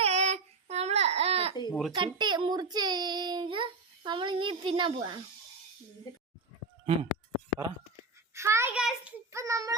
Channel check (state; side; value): quieter; left; 4.0 dB